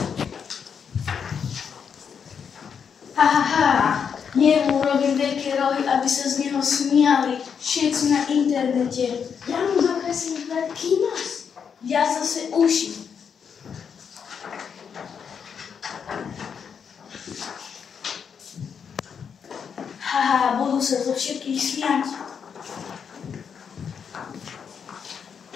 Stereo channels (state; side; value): quieter; right; 7.0 dB